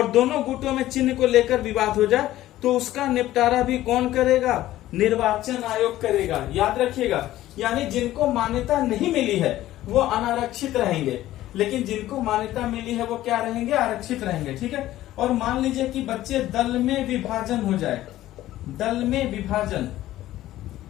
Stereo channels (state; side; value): quieter; right; 14.7 dB